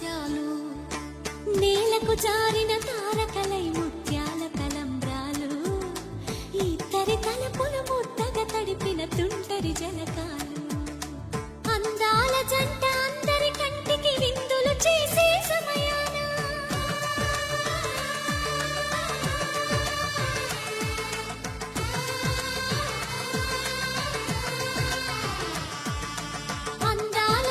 నేలకు జారిన తారకలై ముత్యాల తలంబ్రాలు ఇద్దరి తలపులు ముద్దగా తడిపిన తుంటరి జలకాలు అందాల జంట అందరి కంటికి విందులు చేసే సమయాన అందాల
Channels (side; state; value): both; identical; correlation 1.00